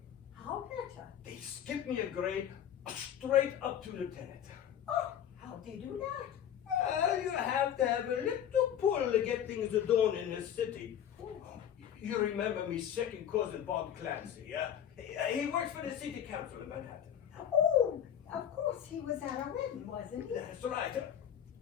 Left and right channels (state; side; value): quieter; right; 9.7 dB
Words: How better? They skipped me a grade straight up to lieutenant. Oh, how'd they do that? Well, you have to have a little pull to get things done in this city. You remember me second cousin Bob Clancy, yeah? He works for the city council in Manhattan. Oh, of course he was at our wedding, wasn't he? That's right.